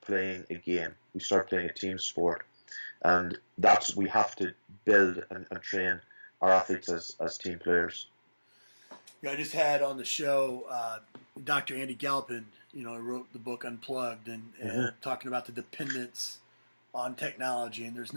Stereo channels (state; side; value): inverted; both; correlation -1.00